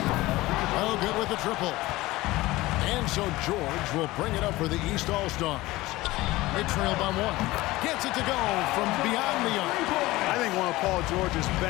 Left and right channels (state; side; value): quieter; right; 19.0 dB